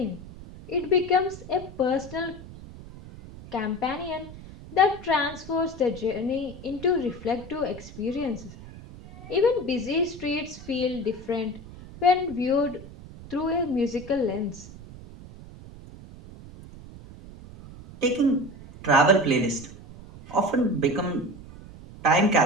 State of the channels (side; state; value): right; noise; rumble, 16 dB below the sound